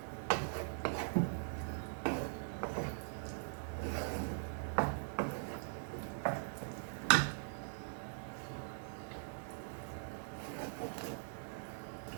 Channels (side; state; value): left; silent; digital silence